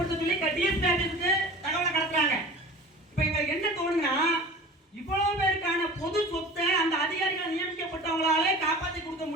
சொல்லி DSP ஆபீஸ்க்கு தகவலை கடத்துறாங்க. இப்ப இவங்களுக்கு என்ன தோணுன்னா, இவ்வளவு பேருக்கான பொது சொத்தை அந்த அதிகாரிகள் நியமிக்கப்பட்டவங்களாலே காப்பாற்றி கொடுக்க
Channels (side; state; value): both; normal; correlation 0.39